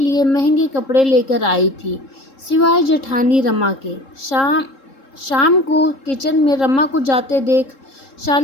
महंगे कपड़े लेकर आई थी, सिवाय जेठानी रमा के। शाम को किचन में रमा को जाते देख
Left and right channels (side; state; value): right; late; 3.7 ms